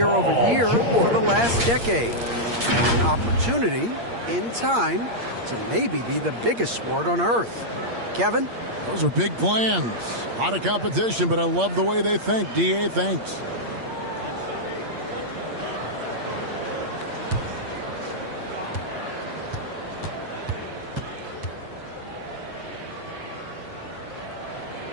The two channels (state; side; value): late; left; 8.6 ms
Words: over year for the last decade. An opportunity, in time, to maybe be the biggest sport on earth. Kevin? Those are big plans. A lot of competition, but I love the way they think. D.A., thanks.